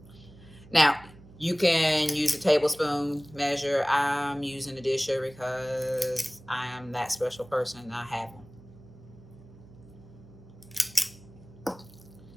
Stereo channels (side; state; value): right; noise; hum, 21 dB below the sound